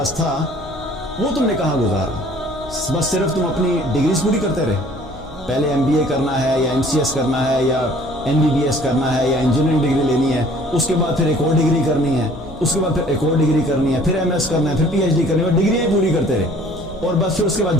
تھا وہ تم نے کہاں گزارا. بس صرف تم اپنی ڈگریز پوری کرتے رہے، پہلے MBA کرنا ہے یا MCS کرنا ہے یا MBBS کرنا ہے یا انجینئرنگ ڈگری لینی ہے، اس کے بعد پھر ایک اور ڈگری کرنی ہے، اس کے بعد پھر ایک اور ڈگری کرنی ہے، پھر MS کرنا ہے، پھر PhD کرنی ہے، ڈگریاں پوری کرتے رہے. اور بس پھر اس کے بعد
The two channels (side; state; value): left; noise; hum, 16 dB below the sound